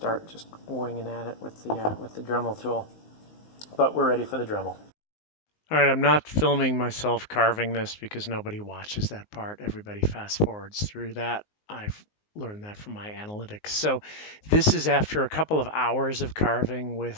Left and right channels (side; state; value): right; late; 19 ms